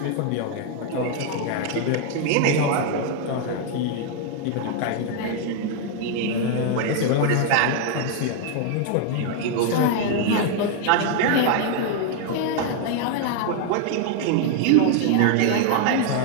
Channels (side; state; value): both; different; correlation 0.00